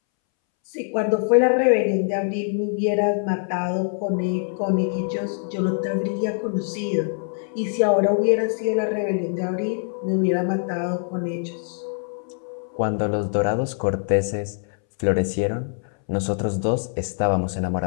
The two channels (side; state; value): right; silent; 63 dB below the other